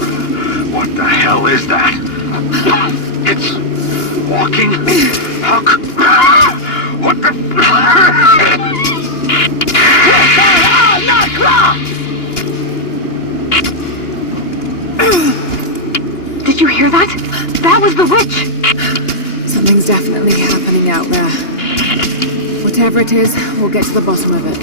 What the hell is that? It's walking? How what the Did you hear that? That was the witch! Something's definitely happening out there. Whatever it is, we'll get to the bottom of it.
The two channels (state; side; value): late; right; 2.9 ms